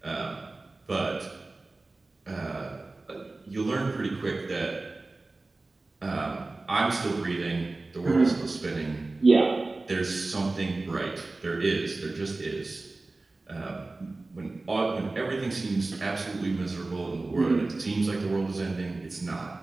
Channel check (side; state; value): left; quieter; 3.3 dB